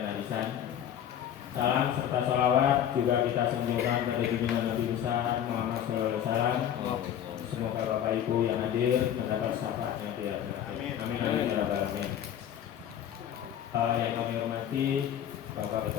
arisan. Salam serta salawat juga kita sanjungkan pada junjungan Nabi besar Muhammad SAW. Semoga Bapak Ibu yang hadir mendapat syafaatnya di akhirat. Amin amin ya rabbal alamin. Yang kami hormati Bapak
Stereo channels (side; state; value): right; quieter; 10.1 dB